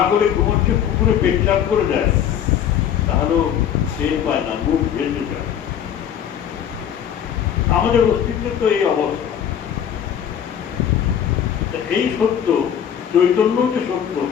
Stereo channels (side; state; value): right; quieter; 9.2 dB